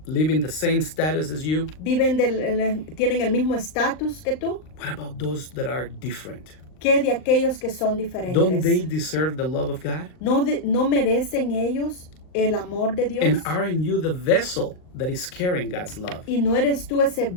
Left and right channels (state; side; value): late; right; 39 ms